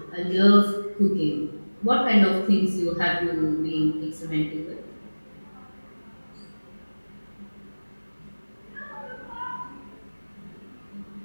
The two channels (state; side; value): inverted; both; correlation -1.00